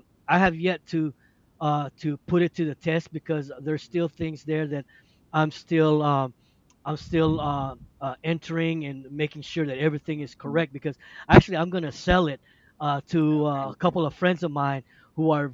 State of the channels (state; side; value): identical; both; correlation 1.00